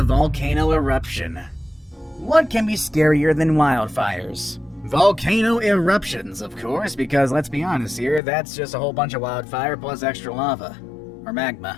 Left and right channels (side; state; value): right; drops out; at 8.2 s